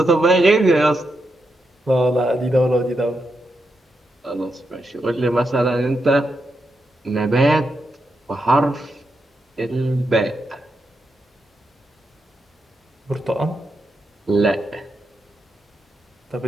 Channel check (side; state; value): both; normal; correlation 0.84